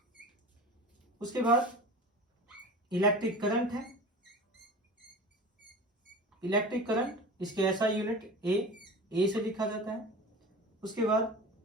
उसके बाद इलेक्ट्रिक करंट है, इलेक्ट्रिक करंट इसके SI यूनिट ए से लिखा जाता है। उसके बाद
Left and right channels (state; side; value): normal; both; correlation 0.35